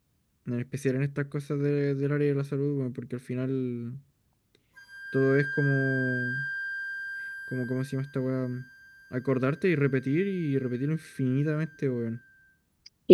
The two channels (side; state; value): both; identical; correlation 1.00